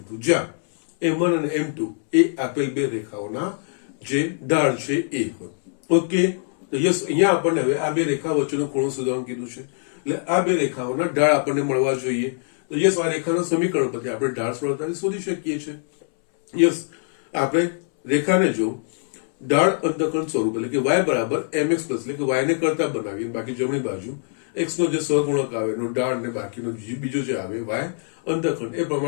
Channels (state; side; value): silent; right; 63 dB below the other